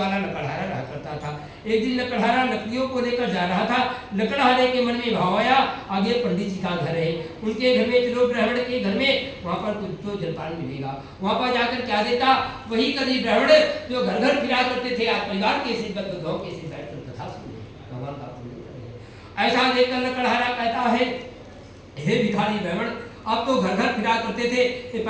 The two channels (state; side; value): identical; both; correlation 1.00